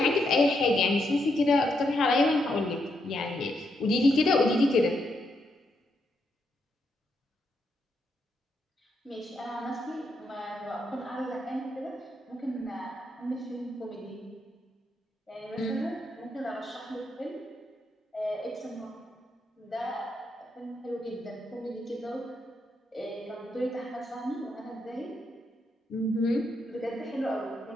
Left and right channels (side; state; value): both; normal; correlation 0.80